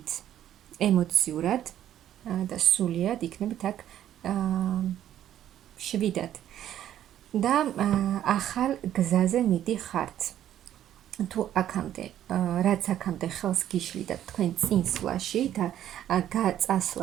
ემოციურად და სულიად იქნებით აქ მშვიდად. და ახალ გზაზე მიდიხართ. თუ აქამდე, რაც აქამდე ხელს გიშლიდა თქვენ წინსვლაში და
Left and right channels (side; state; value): left; quieter; 11.4 dB